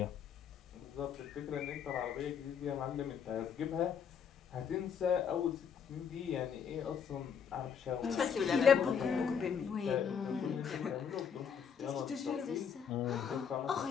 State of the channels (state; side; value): quieter; right; 7.3 dB